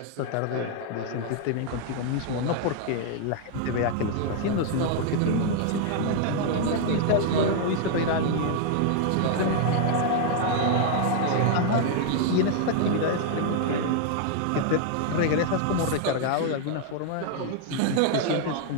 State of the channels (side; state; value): both; different; correlation 0.00